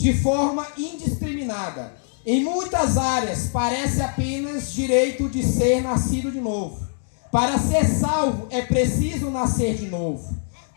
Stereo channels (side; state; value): right; silent; 63 dB below the other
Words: forma indiscriminada. Em muitas áreas, parece apenas direito de ser nascido de novo. Para ser salvo, é preciso nascer de novo.